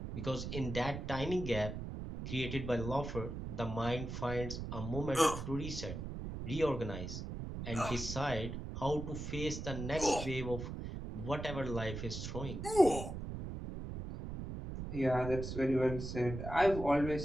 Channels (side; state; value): right; noise; rumble, 6 dB below the sound